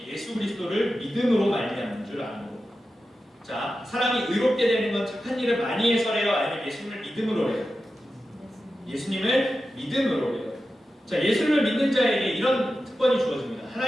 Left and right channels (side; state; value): both; normal; correlation 0.92